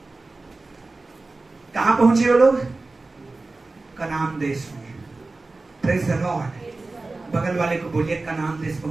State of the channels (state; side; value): quieter; left; 3.4 dB